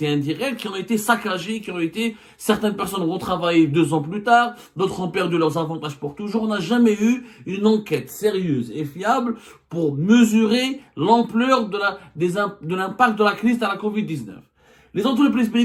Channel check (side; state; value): both; identical; correlation 1.00